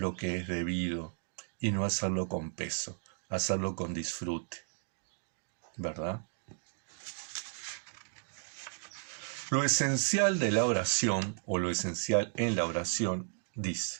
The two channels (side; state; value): left; silent; 55 dB below the other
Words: que es debido y no hacerlo con peso, hacerlo con disfrute, ¿verdad? Lo esencial de la oración, o lo esencial en la oración,